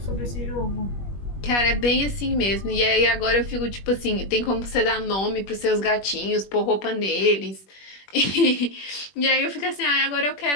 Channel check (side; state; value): right; late; 21 ms